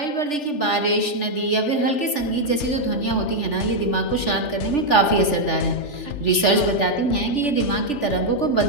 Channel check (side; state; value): right; late; 3.4 ms